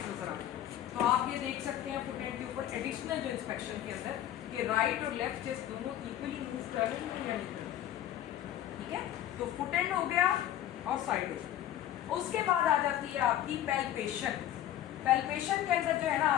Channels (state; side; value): quieter; right; 12.1 dB